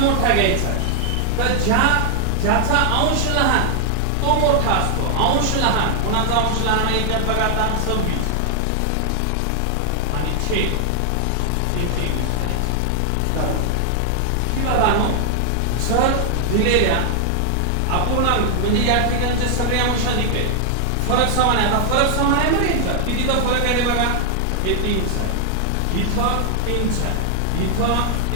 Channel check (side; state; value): both; different; correlation 0.00